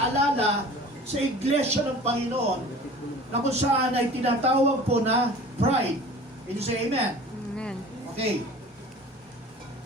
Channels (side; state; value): both; normal; correlation 0.43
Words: sa iglesia ng Panginoon na kung saan ay tinatawag po na pride. Can you say amen? Amen. Okay.